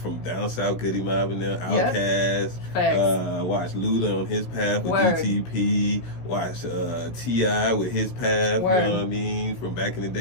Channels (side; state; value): right; late; 16 ms